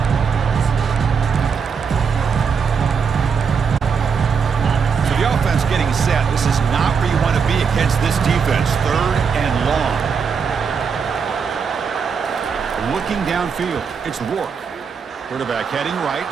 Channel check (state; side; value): quieter; left; 6.1 dB